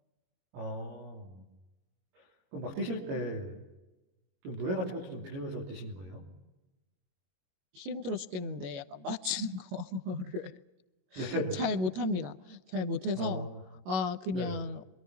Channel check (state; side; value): late; left; 22 ms